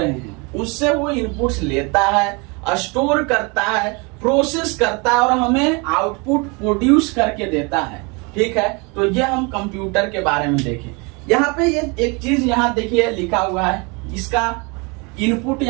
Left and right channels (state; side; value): quieter; left; 29.6 dB